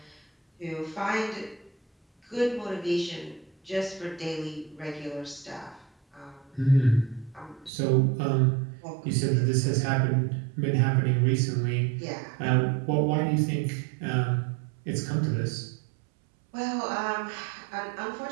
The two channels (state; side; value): drops out; left; at 7.7 s